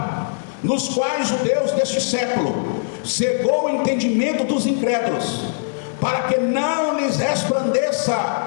Nos quais o Deus deste século cegou o entendimento dos incrédulos, para que não lhes resplandeça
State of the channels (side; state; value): right; silent; 65 dB below the other